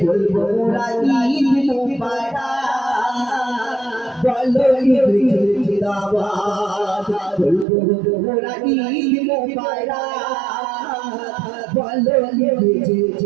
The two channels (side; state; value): left; drops out; at 7.7 s